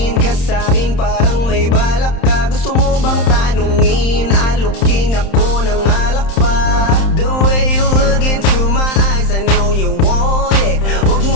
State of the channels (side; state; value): right; late; 31 ms